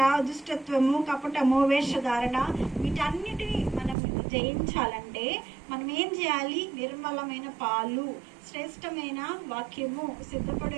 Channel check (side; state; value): left; drops out; at 4.0 s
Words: దుష్టత్వము, కపటము, వేషధారణ వీటన్నిటిని మనం జయించాలంటే మనం ఏం చేయాలి? నిర్మలమైన పాలు, శ్రేష్టమైన వాక్యము, సిద్ధపడి